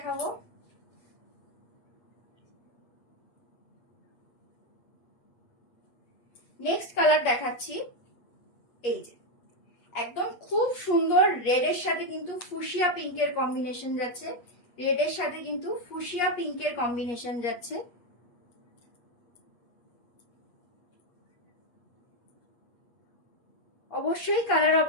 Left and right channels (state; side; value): late; right; 8.4 ms